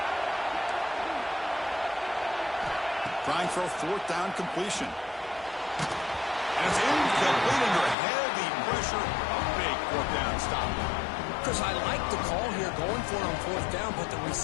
Trying for a 4th down completion. And it's incomplete under heavy pressure. A big 4th down stop. Because I like the call here going for it on 4th down, but the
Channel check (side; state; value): right; drops out; at 8.0 s